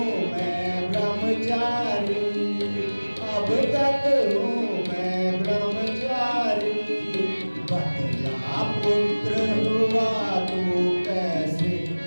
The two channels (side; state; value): both; inverted; correlation -1.00